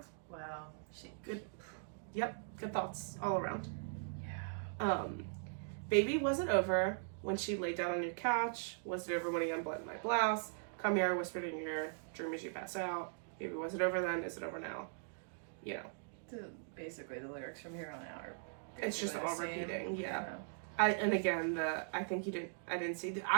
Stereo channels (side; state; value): left; silent; digital silence